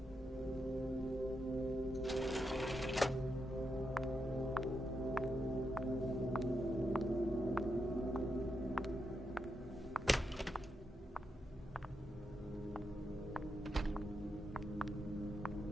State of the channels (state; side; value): normal; both; correlation 0.84